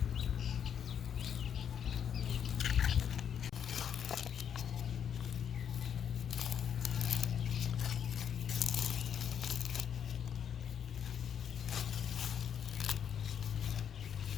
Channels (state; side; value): quieter; right; 8.4 dB